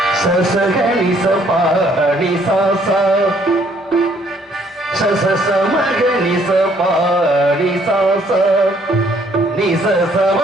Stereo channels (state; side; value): normal; both; correlation 0.64